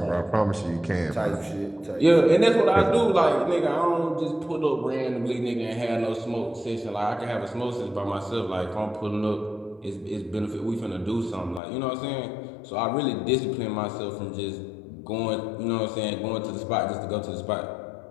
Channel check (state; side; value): drops out; right; at 11.6 s